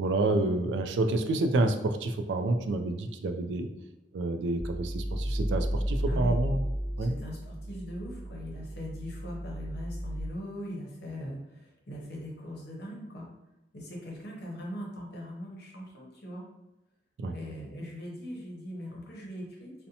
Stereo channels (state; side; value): normal; both; correlation 0.67